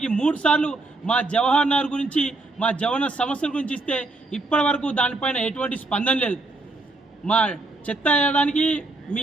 3 సార్లు మా జవహర్ నగర్ గురించి, మా జవహర్ సమస్యల గురించి ఇస్తే ఇప్పటి వరకు దానిపైన ఎటువంటి స్పందన లేదు. మా చెత్త వేయడానికి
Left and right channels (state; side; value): quieter; left; 3.1 dB